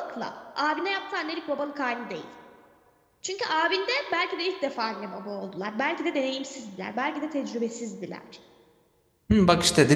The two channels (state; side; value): identical; both; correlation 1.00